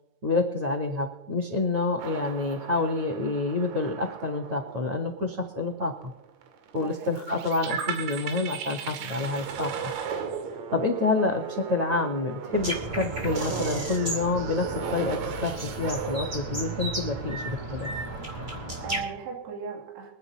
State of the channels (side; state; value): left; late; 9.0 ms